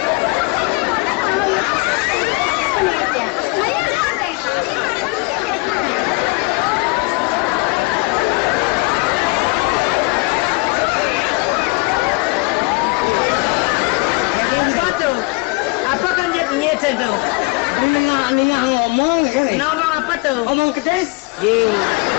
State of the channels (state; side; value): quieter; right; 26.5 dB